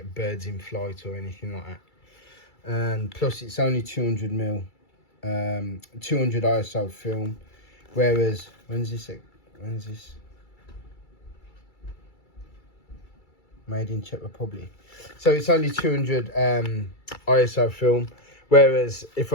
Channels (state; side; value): late; right; 2.3 ms